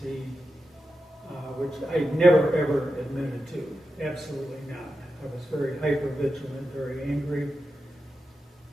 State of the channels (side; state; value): both; normal; correlation 0.90